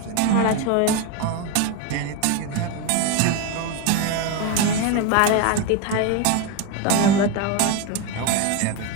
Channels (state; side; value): different; both; correlation 0.02